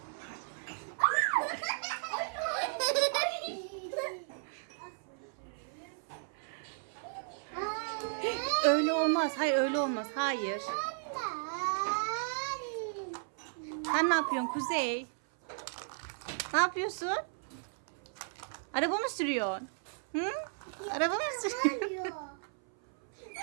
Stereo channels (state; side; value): silent; left; 55 dB below the other